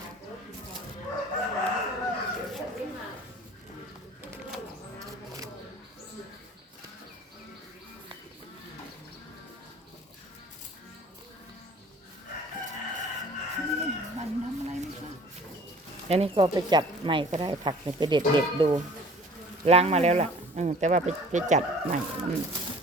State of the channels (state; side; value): normal; both; correlation 0.49